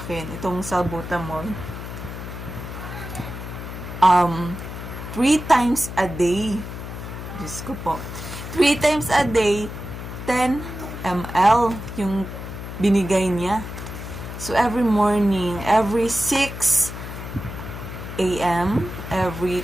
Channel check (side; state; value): left; noise; hum, 9 dB below the sound